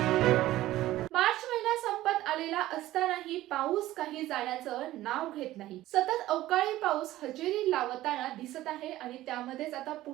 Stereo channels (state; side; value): quieter; left; 15.4 dB